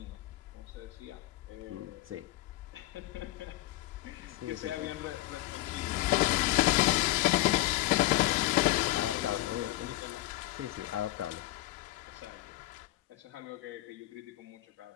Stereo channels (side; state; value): right; quieter; 17.2 dB